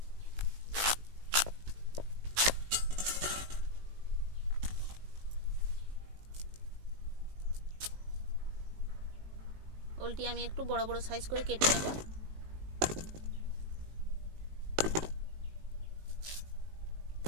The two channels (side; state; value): left; late; 19 ms